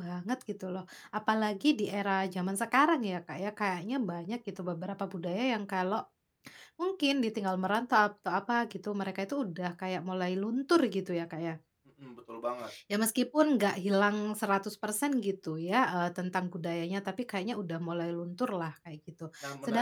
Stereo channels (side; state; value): both; identical; correlation 1.00